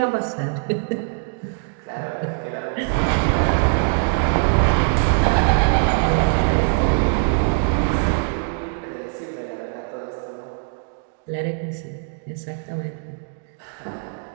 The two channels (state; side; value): silent; left; 64 dB below the other